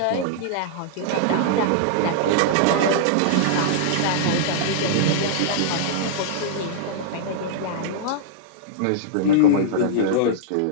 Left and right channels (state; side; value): different; both; correlation -0.01